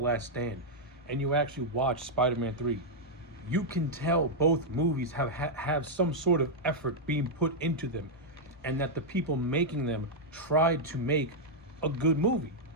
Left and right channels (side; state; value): both; normal; correlation -0.04